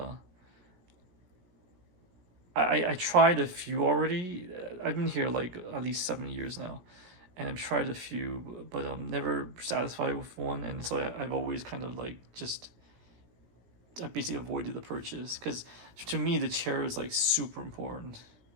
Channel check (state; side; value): late; left; 17 ms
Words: I tried a few already. I've been here like at least 7 years now. And I've tried a few, but I'm never satisfied with one. And so I've always kind of like I basically avoided the purchase, because to me the chair is like super important.